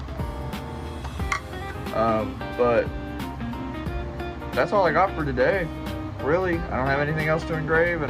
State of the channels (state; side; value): identical; both; correlation 1.00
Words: But that's all I got for today. Really, I don't have anything else to engrave, and